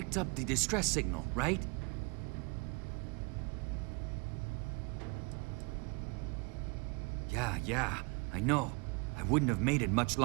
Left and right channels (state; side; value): quieter; left; 30.8 dB